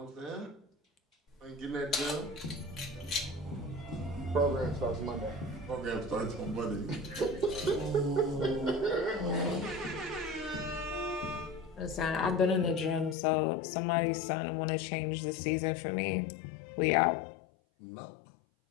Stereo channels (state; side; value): drops out; right; at 13.2 s